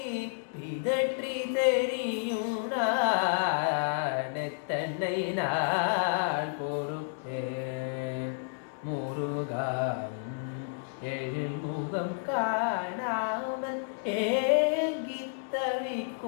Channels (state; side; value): silent; right; digital silence